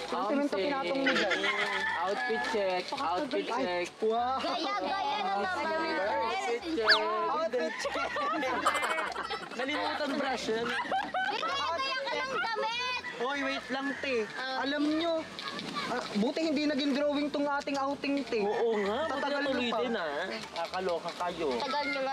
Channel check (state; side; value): identical; both; correlation 1.00